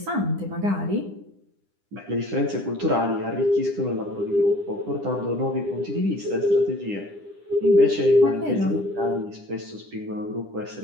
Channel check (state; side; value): late; left; 9.9 ms